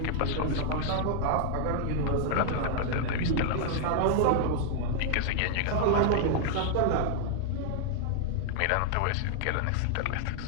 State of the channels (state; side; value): different; both; correlation -0.01